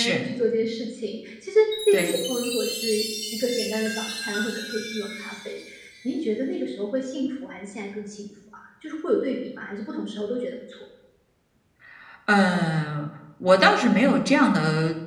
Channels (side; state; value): both; identical; correlation 1.00